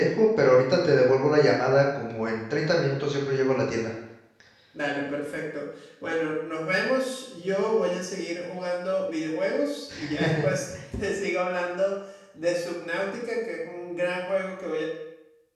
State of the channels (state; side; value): identical; both; correlation 1.00